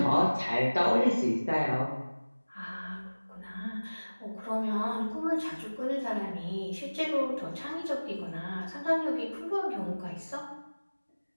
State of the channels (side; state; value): both; inverted; correlation -1.00